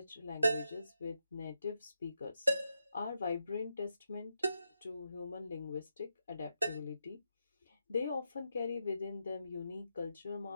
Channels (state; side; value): inverted; both; correlation -0.85